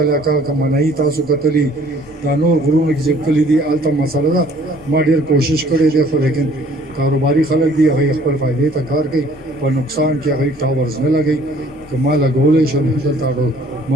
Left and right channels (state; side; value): normal; both; correlation 0.56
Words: علاقه کمنای تاسو کتلی دا نور غرونه کې چې کلی دي الته مسله ده ما ډیر کوشش کړی دی خو لیکن کاروباري خلک دي هغه خپل فائدې ته کار کوي په نقصان کې هغه ټاورز نه لګي که ما لګولې شم دلته